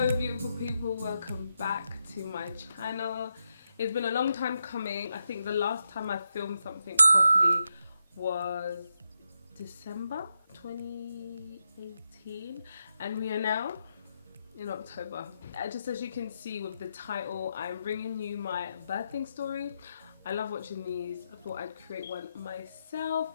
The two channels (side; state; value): both; inverted; correlation -0.85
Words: beautiful people, welcome back to my channel. It's been a long time coming. I think the last time I filmed something properly was December 2018 and we are now in October. Just as you can see with the title, I'm bringing you my birthing story. I love watching these. I thought I'd create one myself.